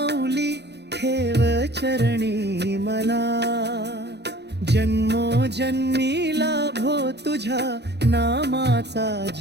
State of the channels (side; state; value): left; late; 0.49 ms